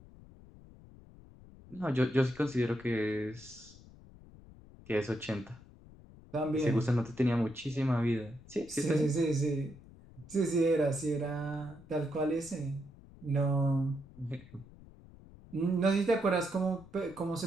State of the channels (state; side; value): noise; left; rumble, 21 dB below the sound